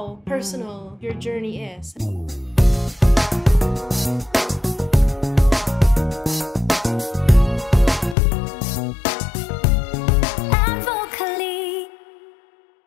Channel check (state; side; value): drops out; right; at 8.2 s